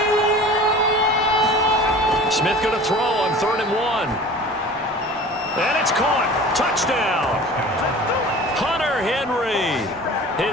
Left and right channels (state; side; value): normal; both; correlation 0.41